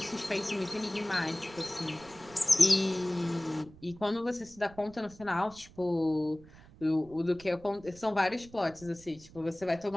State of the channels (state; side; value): noise; right; rumble, 22 dB below the sound